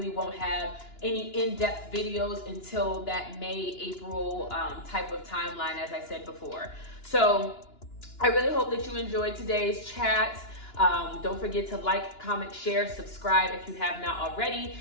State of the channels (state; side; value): late; right; 2.9 ms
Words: won't have any in-depth videos until that May, April type of timeline, as I said before. So I really hope that you enjoyed today's chat. Don't forget to like, comment, share, subscribe if you have not already,